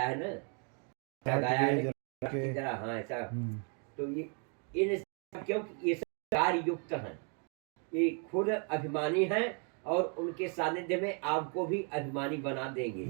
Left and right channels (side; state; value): left; quieter; 39.9 dB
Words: है ना, क्या गाया है कि जरा, हाँ ऐसा। तो ये इन, क्योंकि ये सब कार्य युक्त हैं, ये खुद अभिमानी हैं और उनके सानिध्य में आपको भी अभिमानी बना देंगे।